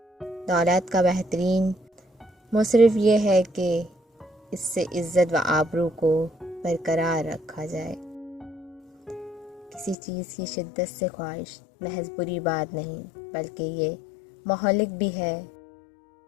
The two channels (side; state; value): right; drops out; at 10.0 s